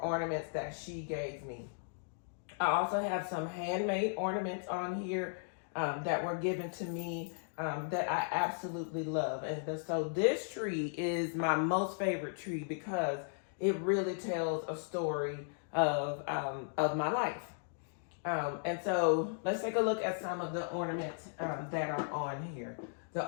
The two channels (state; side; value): silent; right; digital silence